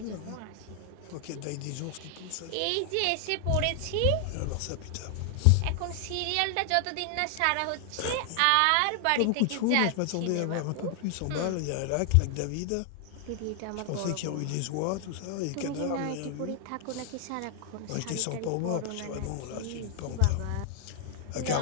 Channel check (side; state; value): both; different; correlation 0.00